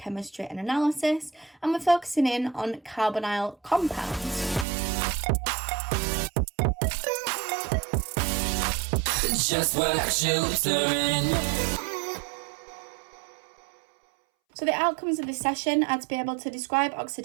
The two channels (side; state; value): left; drops out; at 4.7 s